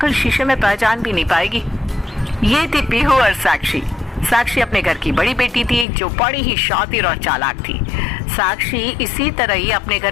शीशे में पहचान भी नहीं पाएगी। ये थी पीहू और साक्षी। साक्षी अपने घर की बड़ी बेटी थी जो बड़ी ही शातिर और चालाक थी। साक्षी इसी तरह ही अपने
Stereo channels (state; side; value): drops out; right; at 5.9 s